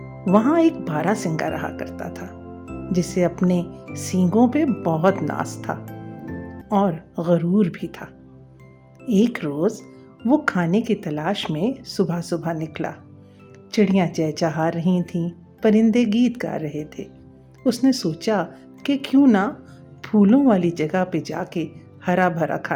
وہاں ایک بارہ سنگا رہا کرتا تھا جسے اپنے سینگوں پہ بہت ناز تھا اور غرور بھی تھا۔ ایک روز وہ کھانے کی تلاش میں صبح صبح نکلا۔ چڑیاں چہچہا رہی تھیں، پرندے گیت گا رہے تھے۔ اس نے سوچا کہ کیوں نہ پھولوں والی جگہ پہ جا کے ہرا بھرا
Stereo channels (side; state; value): both; identical; correlation 1.00